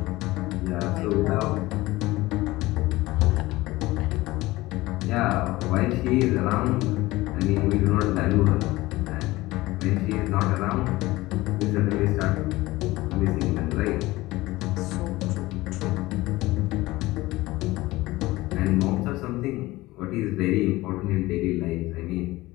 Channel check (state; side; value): quieter; right; 19.1 dB